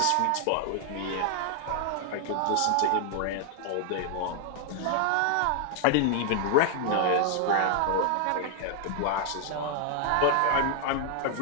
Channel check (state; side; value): different; both; correlation 0.00